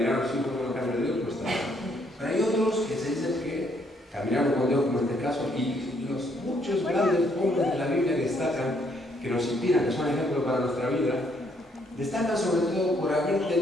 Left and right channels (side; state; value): both; normal; correlation 0.70